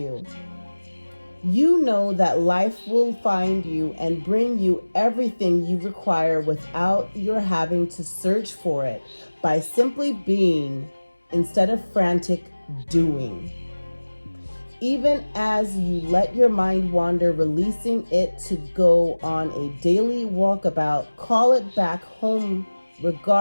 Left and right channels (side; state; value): both; inverted; correlation -1.00